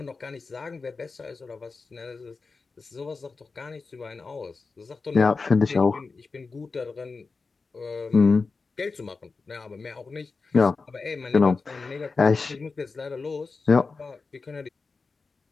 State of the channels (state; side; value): quieter; right; 4.3 dB